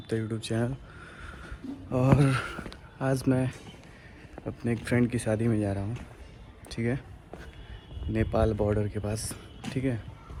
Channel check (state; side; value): identical; both; correlation 1.00